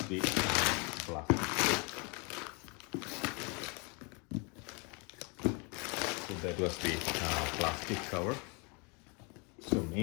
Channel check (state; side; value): quieter; right; 32.4 dB